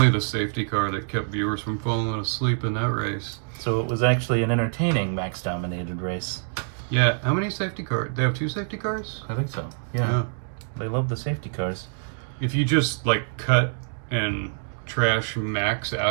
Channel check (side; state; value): left; silent; digital silence